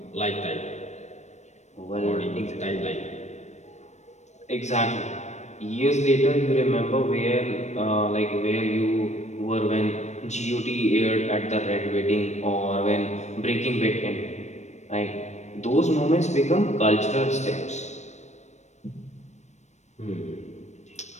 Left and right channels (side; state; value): right; late; 0.33 ms